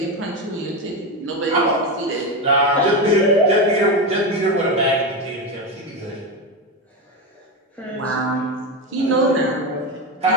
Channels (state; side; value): normal; both; correlation 0.15